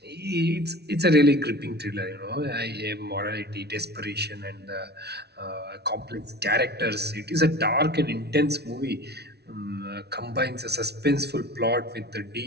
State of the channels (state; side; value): late; left; 0.49 ms